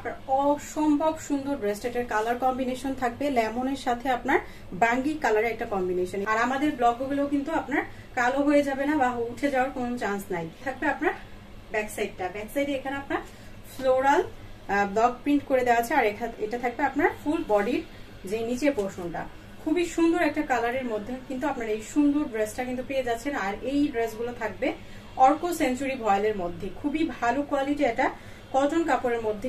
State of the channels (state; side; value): identical; both; correlation 1.00